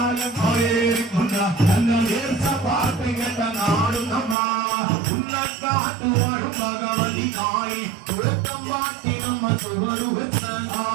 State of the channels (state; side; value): drops out; left; at 4.4 s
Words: ഏറിക്കുന്ന തന്റെ വേർച്ച പാട്ട് കേട്ട നാടും നമ്മ ഉന്നക്കാട്ടു വാഴും ഭഗവതി കാളി തുഴക്കം പാട്ടി നമ്മ ചുവടുവെച്ച